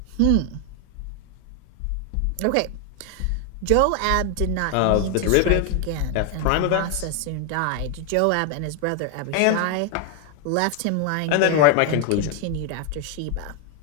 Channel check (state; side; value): different; both; correlation 0.00